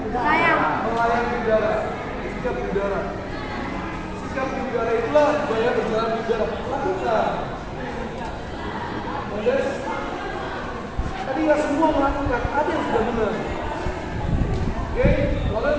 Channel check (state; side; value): identical; both; correlation 1.00